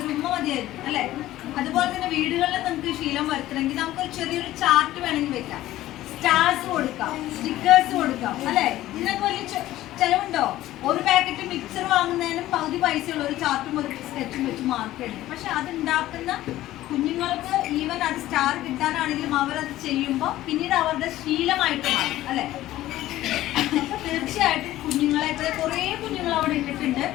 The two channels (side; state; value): right; quieter; 15.0 dB